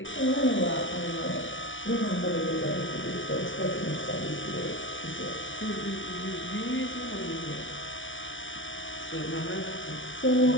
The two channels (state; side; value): late; right; 0.56 ms